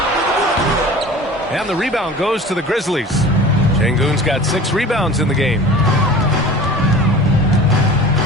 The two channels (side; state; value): both; normal; correlation 0.40